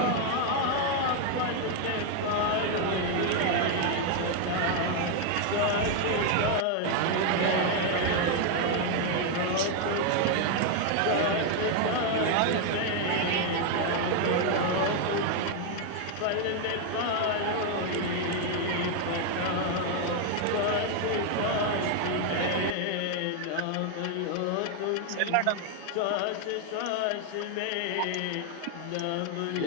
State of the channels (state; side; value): different; both; correlation 0.01